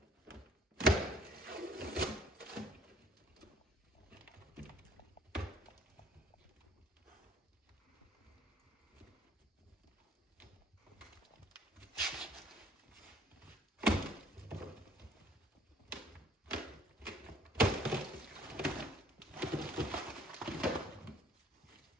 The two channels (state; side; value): normal; both; correlation 0.57